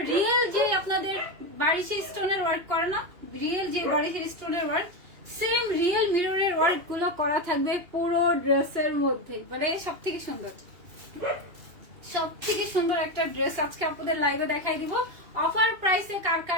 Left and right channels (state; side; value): late; left; 2.7 ms